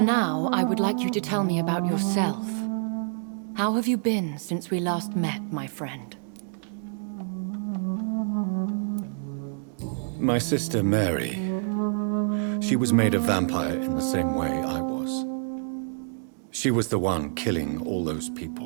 now, I would like you to tell me about yourself. How have you been since we last met, my friend? My sister Mary. She was made a vampire in the same way I was. She was the one killing all those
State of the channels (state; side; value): silent; left; digital silence